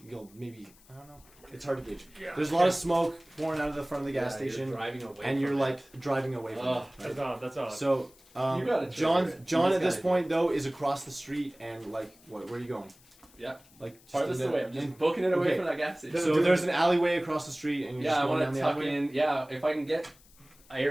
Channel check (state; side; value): noise; left; hiss, 27 dB below the sound